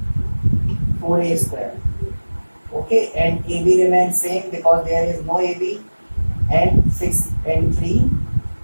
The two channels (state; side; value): inverted; both; correlation -1.00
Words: 4A square. Okay, and AB remains same because there is no AB, and 6 and 3